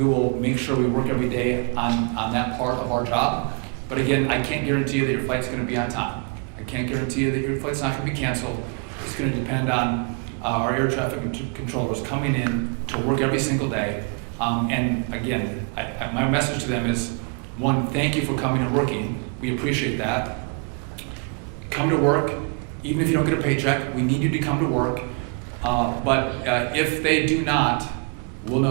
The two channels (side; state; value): left; quieter; 37.8 dB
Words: will make sure we work every day on that part of our job. But again, I can't guarantee you that your flight's going to be on time. I can't guarantee you that your flight's not going to be canceled. It's going to depend on our air traffic controllers coming in to work every single day. And again, my message to them is, one, thank you for coming and working. We appreciate that. Come to work, even if you don't get a paycheck. We need you to come to work. But if they do not, we'll